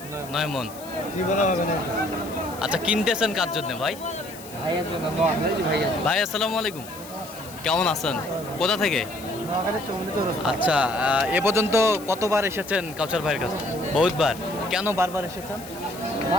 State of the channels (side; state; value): left; noise; hiss, 17 dB below the sound